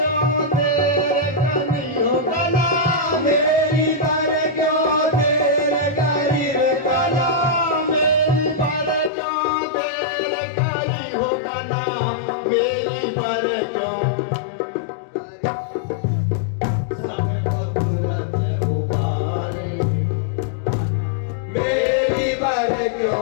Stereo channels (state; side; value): drops out; right; at 9.1 s